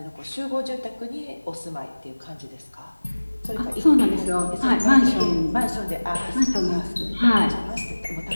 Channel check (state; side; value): inverted; both; correlation -1.00